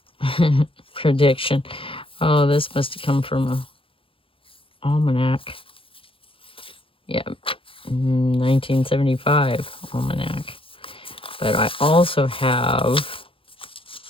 Prediction. Oh, this must have come from a almanac. Yeah, 1975 almanac. But I also have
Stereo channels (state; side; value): late; right; 0.26 ms